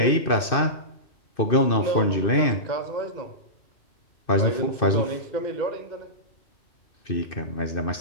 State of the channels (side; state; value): right; late; 2.6 ms